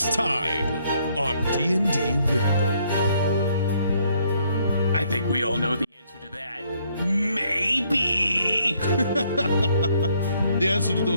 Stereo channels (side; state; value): both; inverted; correlation -0.68